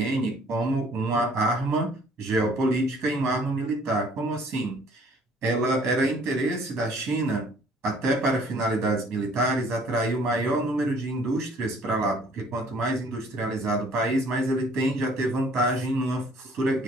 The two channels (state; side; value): normal; both; correlation 0.57